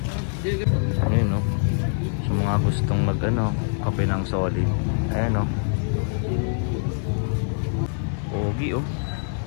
ayun no. Sa mga gustong mag ano, kape ng solid. Ayan no. Pogi oh.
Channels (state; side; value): silent; right; 62 dB below the other